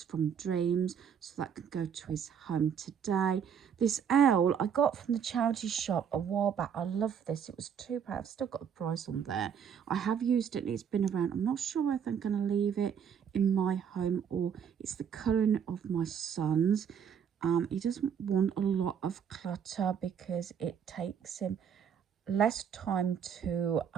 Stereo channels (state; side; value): quieter; left; 7.8 dB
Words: from Dreams, so that could go to his home today. This owl I got from the charity shop a while back. I love this. It was £2. I've still got the price on there. I have used it and it's been around. I'm not sure if I'm going to leave it in my home or it's the colouring of my son's. He doesn't want a lot of clutter because it takes him less time to